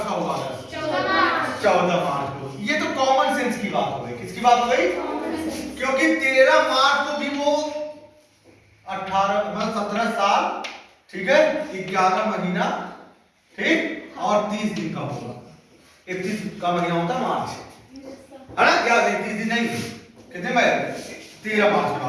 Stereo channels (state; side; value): identical; both; correlation 1.00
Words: का होगा? 14 मार्च को। ये तो कॉमन सेंस की बात हो गई। किसकी बात हो गई? क्योंकि 13 मार्च को भी वो 17 साल, ठीक है, 11 महीना, ठीक, और 30 दिन का होगा। 31 का महीना होता है मार्च, है ना? क्या 31 दिन नहीं, कितने में? 13 मार्च का,